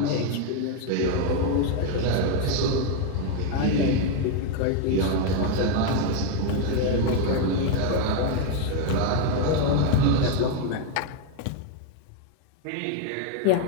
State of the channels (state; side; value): different; both; correlation 0.01